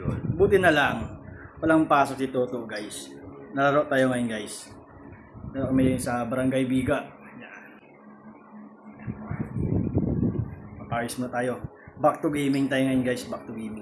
Buti na lang, walang pasok si Toto guys. Nalaro tayo ngayon guys. Nalaro kami sa Barangay Biga. Yan. Ayos muna tayo. Back to gaming tayo ngayon guys, back to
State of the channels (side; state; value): both; identical; correlation 1.00